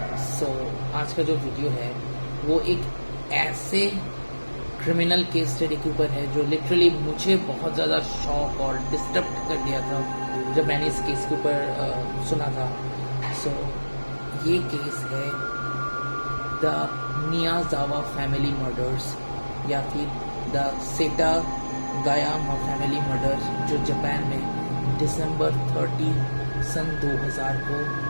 So आज का जो वीडियो है वो एक ऐसे क्रिमिनल केस स्टडी के ऊपर है जो लिटरली मुझे बहुत ज़्यादा शॉक और डिस्टर्ब कर दिया था जब मैंने इस केस के ऊपर सुना था. सो ये केस है द मियाजावा फैमिली मर्डर्स या फिर द सेटागायामा फैमिली मर्डर्स जो जापान में दिसंबर 30 सन 2000 को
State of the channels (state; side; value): inverted; both; correlation -1.00